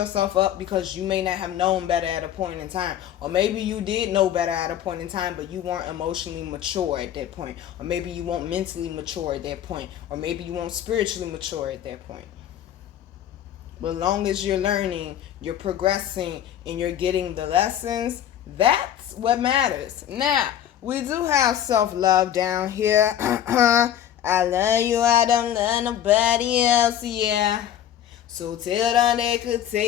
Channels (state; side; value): quieter; right; 10.8 dB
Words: up because you may not have known better at a point in time. Or maybe you did know better at a point in time, but you weren't emotionally mature at that point. Or maybe you weren't mentally mature at that point. Or maybe you weren't spiritually mature at that point. But as long as you're learning, you're progressing, and you're getting the lessons, that's what matters. Now, we do have self-love down here. I love you, I don't love nobody else, yeah. So tell them they could